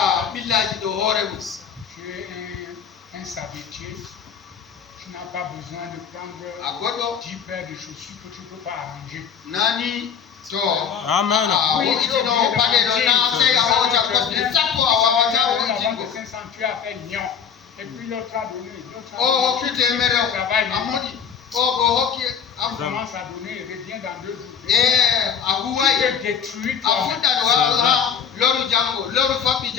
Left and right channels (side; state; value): right; quieter; 7.2 dB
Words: Tu es un savetier. Tu n'as pas besoin de prendre 10 paires de chaussures que tu ne peux pas arranger. Amen. Tu as fait lion. Et puis l'autre a donné. On commence à donner et revient dans 2 jours. Tu te détruis toi-même.